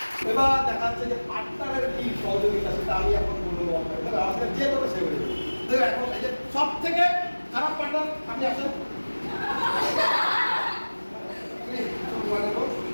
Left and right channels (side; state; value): both; inverted; correlation -1.00